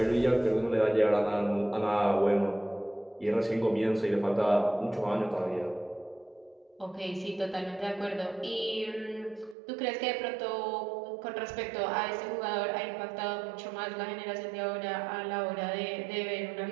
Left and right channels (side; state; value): left; drops out; at 9.6 s